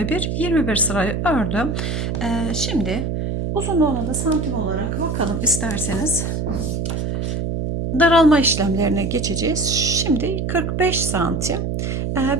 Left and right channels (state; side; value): noise; right; hum, 2 dB below the sound